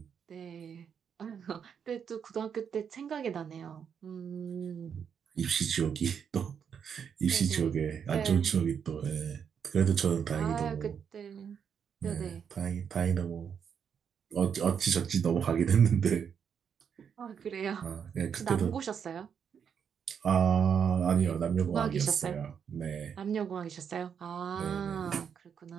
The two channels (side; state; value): left; quieter; 7.4 dB